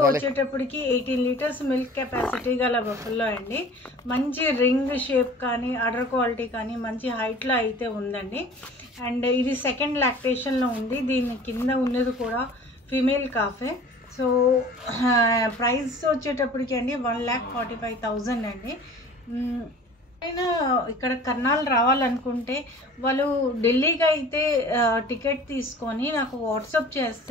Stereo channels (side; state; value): both; normal; correlation 0.44